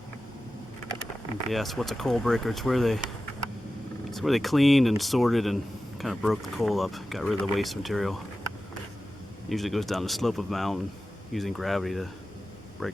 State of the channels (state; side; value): normal; both; correlation 0.94